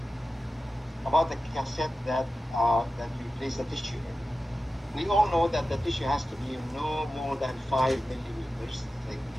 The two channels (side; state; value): both; normal; correlation 0.93